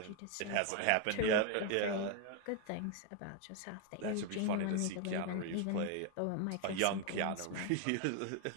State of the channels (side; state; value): both; different; correlation 0.01